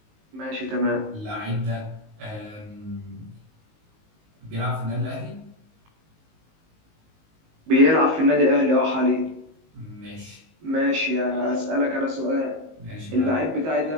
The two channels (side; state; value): left; late; 19 ms